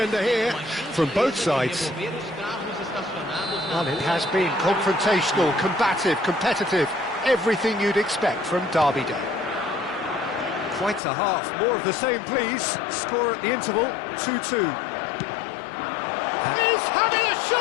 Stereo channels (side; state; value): right; drops out; at 11.0 s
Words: here from both sides. Well, it has been confrontational, combative, competitive, everything you'd expect from Derby Day. Quite a half, more of the same please. Score at the interval, 2-2. He's having a